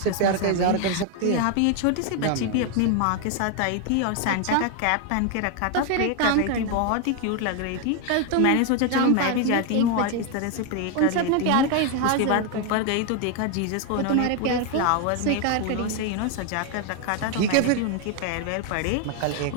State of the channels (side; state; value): both; different; correlation 0.01